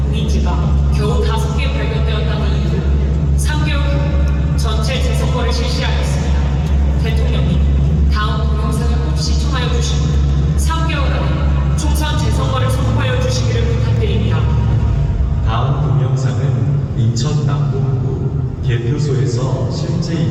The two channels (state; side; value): identical; both; correlation 1.00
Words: 공인지가 겨우 5개 발견되었다는 이유로 3개월 후 전체 재선거를 실시하였습니다. 대통령님, 다음 동영상을 꼭 시청하여 주시고 3개월 안에 총선 재선거를 선포하여 주시기를 부탁드립니다. 다음 동영상은 인천 남동구 개표소에서 실제